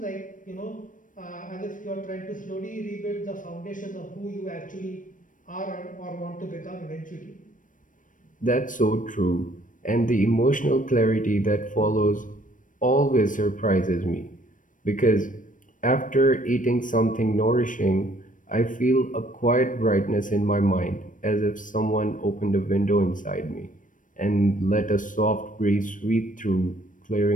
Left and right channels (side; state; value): right; late; 0.38 ms